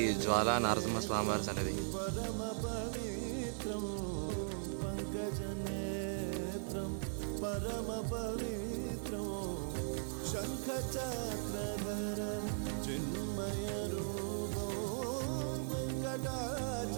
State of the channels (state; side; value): silent; left; digital silence